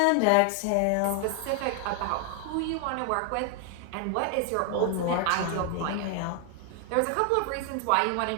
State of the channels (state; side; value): different; both; correlation 0.00